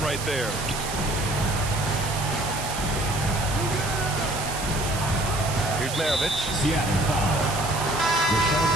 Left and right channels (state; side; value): noise; right; hiss, 7 dB below the sound